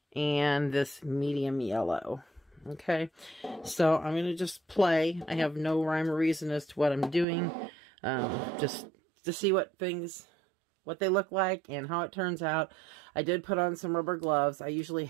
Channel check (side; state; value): left; drops out; at 7.2 s